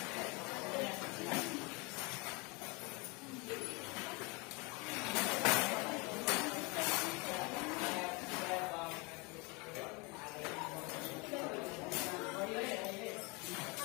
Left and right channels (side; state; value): right; quieter; 27.9 dB